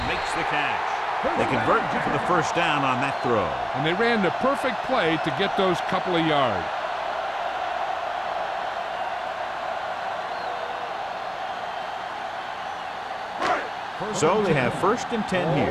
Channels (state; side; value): identical; both; correlation 1.00